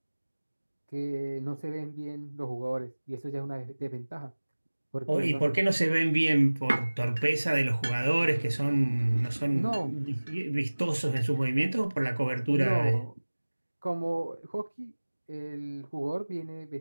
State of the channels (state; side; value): inverted; both; correlation -1.00